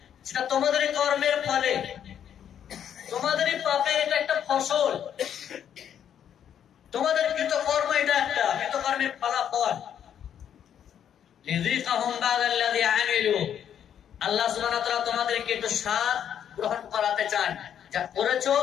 সেটা তোমাদেরই কর্মের ফলে, তোমাদেরই পাপে, এটা একটা ফসল, তোমাদের কৃতকর্ম, এটা একটা কৃতকর্মের ফলাফল। লিযিকাহুম বা'দাল্লাযী আমিলু, আল্লাহ সুবহানাহু ওয়া তাআলা তোমাদেরকে একটু স্বাদ গ্রহণ করাতে চান, যা করেছো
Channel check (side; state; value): right; quieter; 9.3 dB